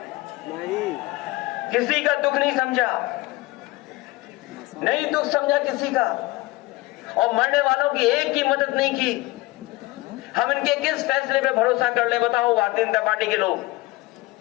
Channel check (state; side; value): quieter; right; 20.2 dB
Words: किसी का दुख नहीं समझा, नहीं दुख समझा किसी का। और मरने वालों की एक की मदद नहीं की। हम इनके किस फैसले पे भरोसा कर ले? बताओ भारतीय जनता पार्टी के लोग।